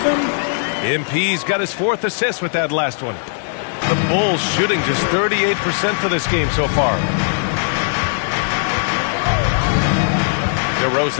MP's got his 4th assist with that last one. The Bulls shooting just 38% for this game so far.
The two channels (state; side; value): silent; right; digital silence